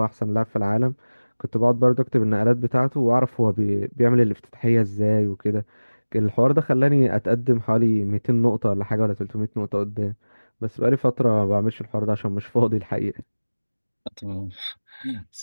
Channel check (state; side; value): inverted; both; correlation -1.00